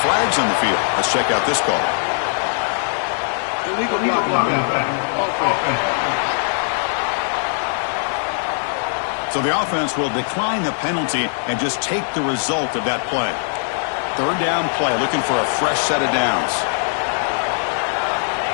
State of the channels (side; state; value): right; silent; 64 dB below the other